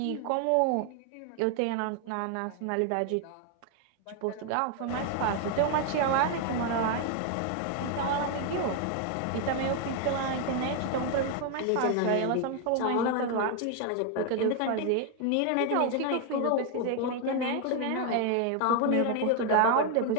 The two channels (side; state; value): both; different; correlation 0.01